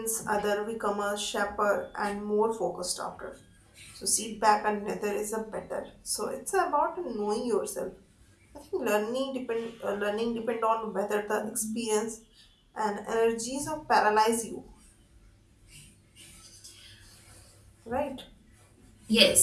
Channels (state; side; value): identical; both; correlation 1.00